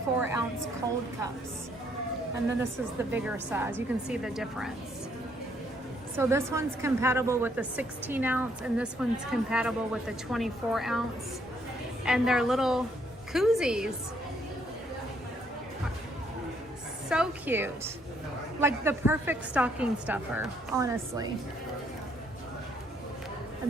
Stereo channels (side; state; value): both; normal; correlation 0.69